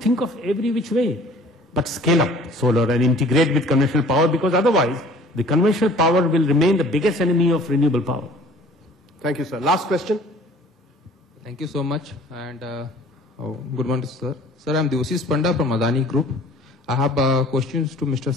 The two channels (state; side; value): normal; both; correlation 0.50